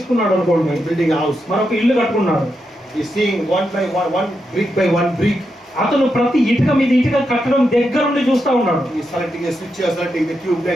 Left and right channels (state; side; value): normal; both; correlation 0.85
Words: అనుకోండి, building a house, మరొక ఇల్లు కట్టుకున్నాడు. he is seeing one brick by one brick అతను ప్రతి ఇటుక మీద ఇటుక కట్టడం దగ్గర నుండి చూస్తా ఉన్నాడు. He is selecting a switches, selecting the tube